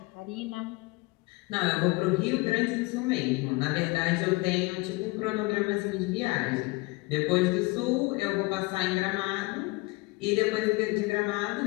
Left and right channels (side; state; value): right; quieter; 24.1 dB